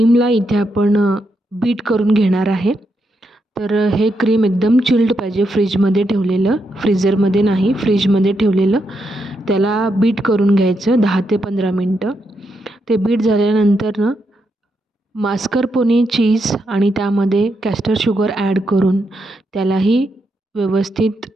इथे आपण बीट करून घेणार आहे. तर हे क्रीम एकदम चिल्ड पाहिजे, फ्रीजमध्ये ठेवलेलं, फ्रीझरमध्ये नाही, फ्रीजमध्ये ठेवलेलं. त्याला बीट करून घ्यायचं 10 ते 15 मिनटं. ते बीट झाल्यानंतर मास्करपोने चीज आणि त्यामध्ये कॅस्टर शुगर ॲड करून त्यालाही व्यवस्थित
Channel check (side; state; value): both; normal; correlation 0.82